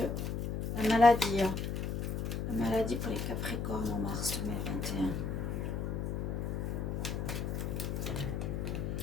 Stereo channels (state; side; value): noise; left; hum, 2 dB below the sound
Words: la maladie. La maladie pour les Capricornes en mars 2021.